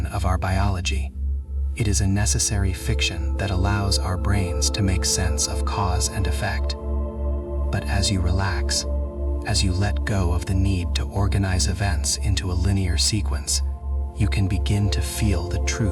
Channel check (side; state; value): both; identical; correlation 1.00